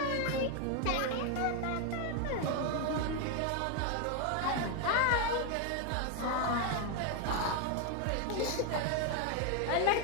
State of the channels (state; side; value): different; both; correlation 0.01